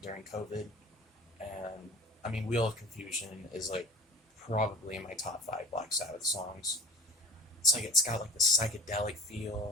during COVID, and I mean, Wheel of Confusion is like probably in my top 5 Black Sabbath songs. It's like it's got like the psychedelic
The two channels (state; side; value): normal; both; correlation 0.39